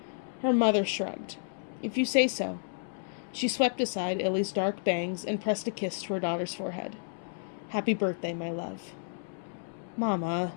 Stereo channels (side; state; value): right; silent; 57 dB below the other